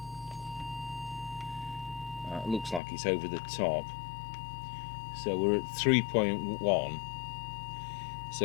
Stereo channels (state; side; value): drops out; right; at 2.8 s